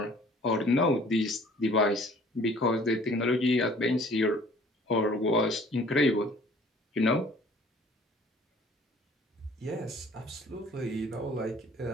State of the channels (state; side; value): normal; both; correlation 0.53